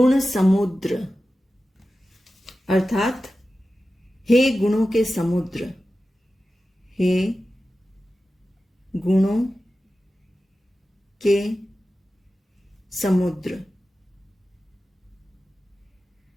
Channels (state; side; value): normal; both; correlation 0.94